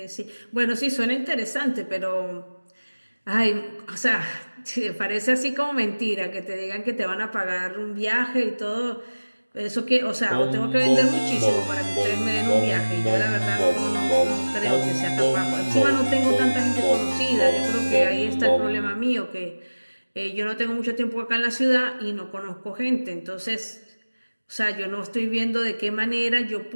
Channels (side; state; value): both; inverted; correlation -1.00